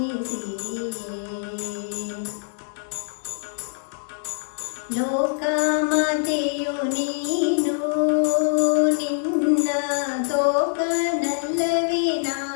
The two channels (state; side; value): silent; right; digital silence